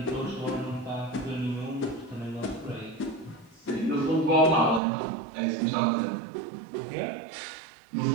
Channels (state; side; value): drops out; left; at 4.8 s